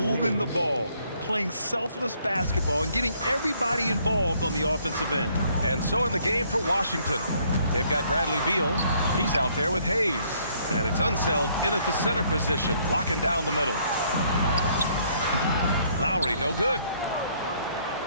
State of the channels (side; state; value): both; inverted; correlation -0.66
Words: the ball, playing selfless basketball, and getting everybody involved on the offensive end. And so in the game for Washington, they've got Bradley Beal. He's out there with Hayes. And it's Unseld in at the center position, locking down the middle. Lowry, no good.